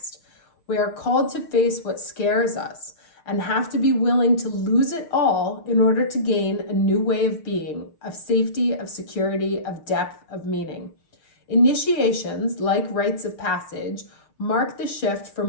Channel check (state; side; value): late; right; 6.7 ms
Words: We are called to face what scares us and have to be willing to lose it all in order to gain a new way of being, of safety, of security, of depth, of meaning. Initiations, like rites of passage, mark the shift